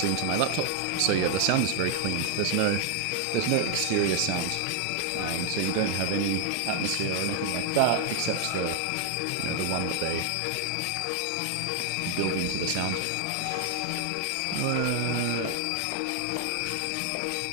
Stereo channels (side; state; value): both; different; correlation 0.00